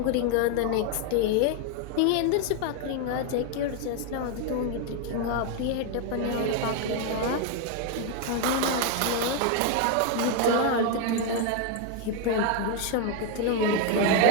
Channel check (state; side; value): different; both; correlation 0.01